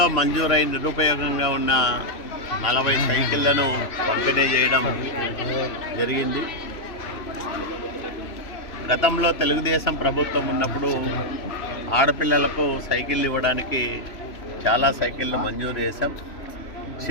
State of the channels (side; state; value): right; late; 3.0 ms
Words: మంజూరై నిరుపయోగంగా ఉన్న 40 సైకిళ్లను పంపిణీ చేయడం జరిగింది. గతంలో తెలుగుదేశం ప్రభుత్వం ఉన్నప్పుడు ఆడపిల్లలకు సైకిళ్ళు ఇవ్వడానికి చాలా సైకిళ్ళు మంజూరు చేశాం.